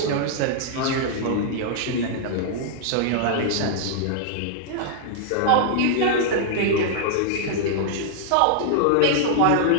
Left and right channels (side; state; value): both; different; correlation -0.01